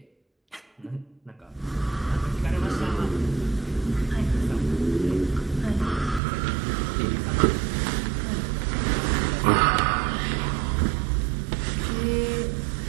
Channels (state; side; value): drops out; left; at 6.2 s